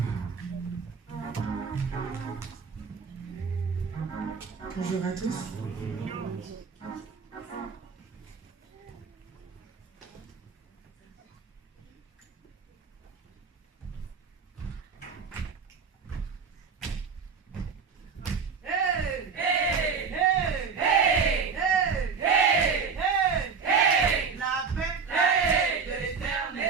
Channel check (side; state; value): left; quieter; 5.7 dB